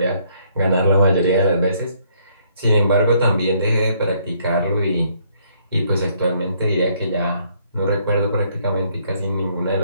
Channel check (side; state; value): both; inverted; correlation -0.67